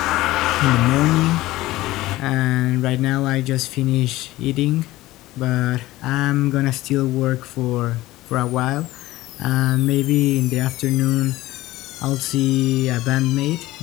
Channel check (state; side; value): quieter; right; 17.5 dB